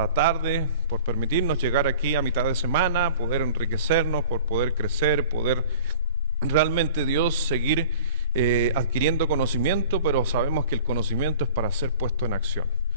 tarde por permitirnos llegar aquí a mitad de semana, poder enriquecernos, por poder crecer, poder realmente Dios seguir adquiriendo conocimiento, pero sabemos que el conocimiento es para ser puesto en acción.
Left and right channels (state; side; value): inverted; both; correlation -0.43